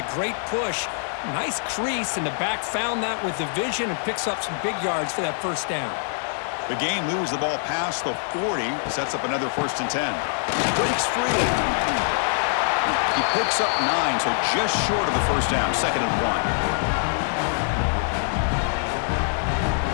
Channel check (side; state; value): right; silent; 62 dB below the other